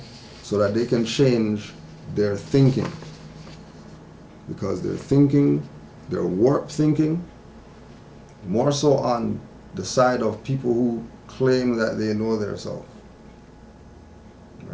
so that they can change their thinking. Because their thinking, their warped thinking, more so on the side of people who claim that they know their self.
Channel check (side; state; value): both; identical; correlation 1.00